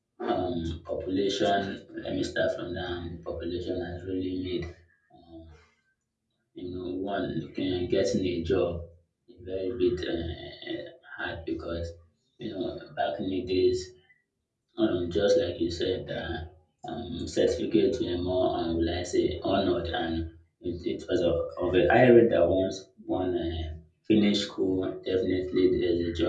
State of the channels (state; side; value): identical; both; correlation 1.00